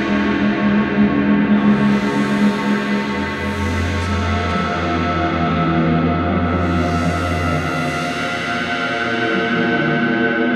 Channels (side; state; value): both; identical; correlation 1.00